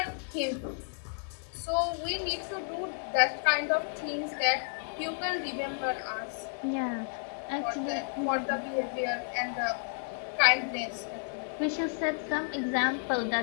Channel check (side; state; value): right; silent; 57 dB below the other